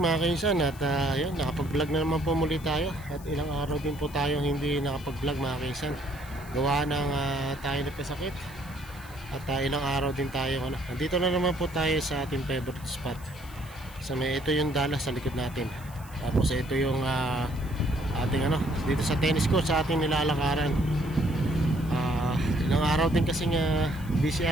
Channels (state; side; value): noise; left; hiss, 21 dB below the sound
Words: kainsan. At yun, nakapag-vlog na naman po muli tayo. At ilang araw din po tayo hindi nakapag-vlog mga kainsan. Gawa ng tayo nagkasakit. At ilang araw din tayo nandito na naman po tayo sa ating favorite spot. Ito yung Dallas sa likod natin. Tapos ito yung ating dito sa tennis court sa ating nilalakaran. Ilang araw din kasi busy